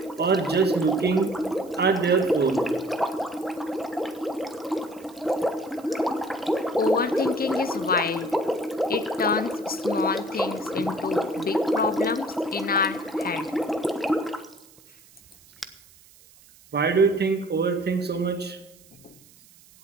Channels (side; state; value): right; noise; hiss, 26 dB below the sound